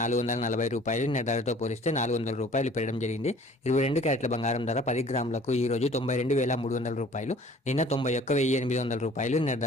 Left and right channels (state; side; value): normal; both; correlation 0.51